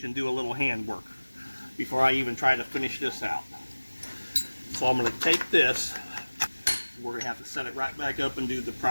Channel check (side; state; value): both; inverted; correlation -1.00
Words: and do a little handwork before I even try to finish this out. So I'm going to take this. We're going to have to set it right back up and do the